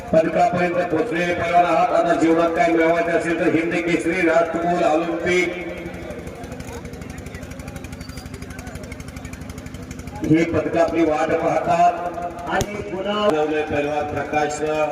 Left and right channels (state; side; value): identical; both; correlation 1.00